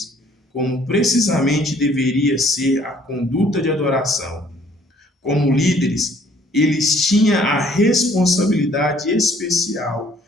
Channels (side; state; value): both; normal; correlation 0.59